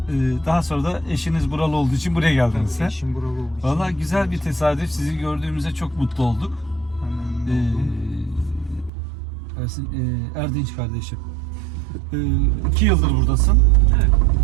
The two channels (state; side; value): drops out; left; at 8.9 s